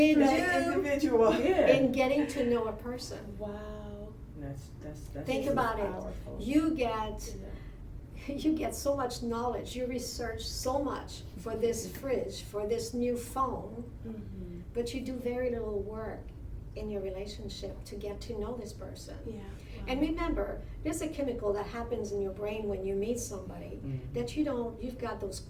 That do. individual. Yeah. In getting to know a person. Wow. That's Think This about is it. powerful. You get so much knowledge. You research so much for this fridge, for this new phone, Mm-hmm. but you do very little work in your relationship to get to know this person. Yeah. Wow. And remember, there's a chemical that happens in your brain when you meet somebody that you've got those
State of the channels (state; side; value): identical; both; correlation 1.00